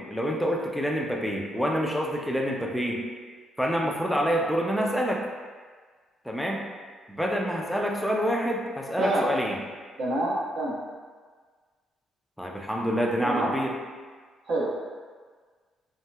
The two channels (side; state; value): both; normal; correlation 0.80